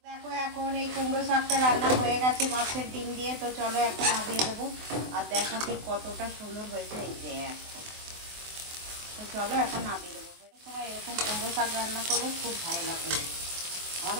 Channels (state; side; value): late; left; 24 ms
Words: দেখো এখন এই কুমড়ো শাকটা রান্না হয়ে গেছে মাছের ডিম দিয়ে। তো চলো এখন নামিয়ে দেবো, আর দেখো ঠিক কতটা সুন্দর হয়েছে এই দেখো। তো চলো এখন নামিয়ে দেবো। সময় এরকম কুমড়ো শাক রান্না করলে খুব ভালো লাগে,